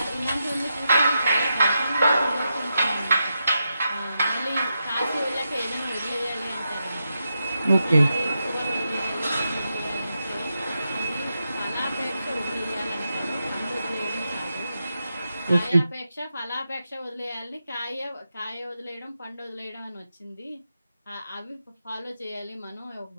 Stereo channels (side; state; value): both; inverted; correlation -0.87